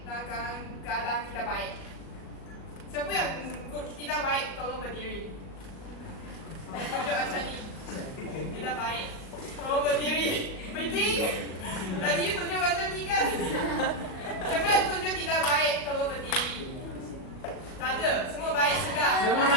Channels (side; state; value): right; late; 38 ms